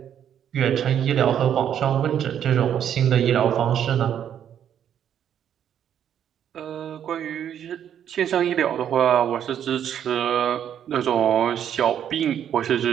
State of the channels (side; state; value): left; quieter; 9.5 dB